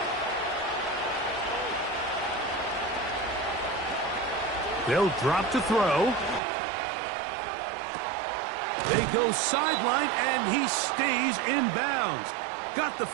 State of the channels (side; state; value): left; drops out; at 6.4 s